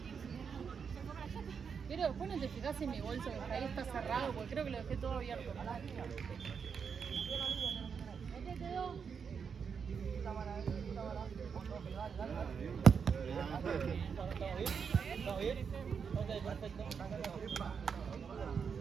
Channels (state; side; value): quieter; left; 6.4 dB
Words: Pero después no te fijas en mi bolso, que ahí está cerrado, porque creo que lo dejé todo abierto. ¿Dónde quedó? ¿Estamos bien? Ok, perfecto.